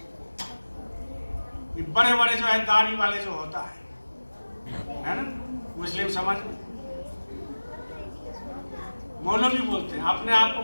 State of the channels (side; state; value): both; inverted; correlation -1.00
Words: ये बड़े बड़े जो है दाढ़ी वाले जो होता है ना, मुस्लिम समाज में मौलवी बोलते हैं, अपने आप को